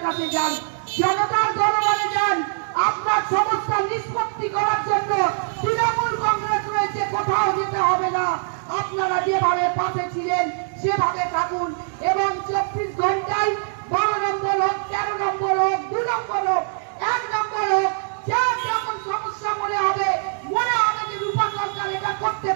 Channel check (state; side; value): silent; left; digital silence